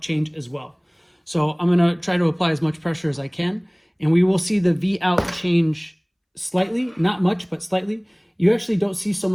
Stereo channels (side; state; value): both; identical; correlation 1.00